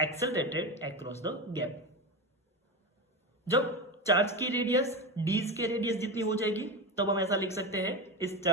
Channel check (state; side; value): normal; both; correlation 0.20